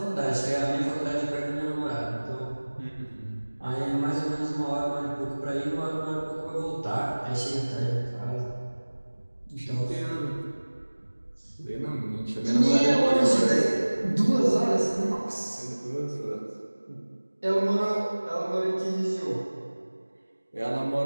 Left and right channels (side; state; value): both; inverted; correlation -1.00